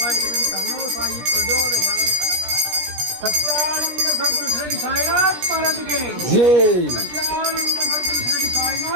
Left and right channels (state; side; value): late; left; 17 ms